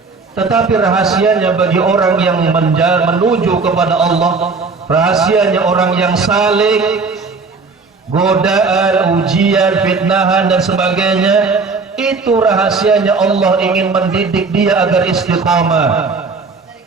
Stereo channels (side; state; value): left; quieter; 4.4 dB